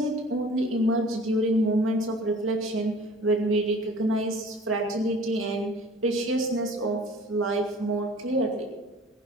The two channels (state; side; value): normal; both; correlation 0.47